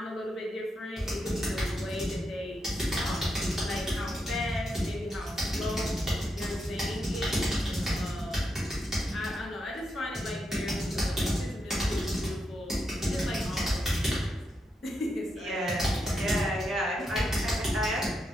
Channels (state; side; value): normal; both; correlation 0.83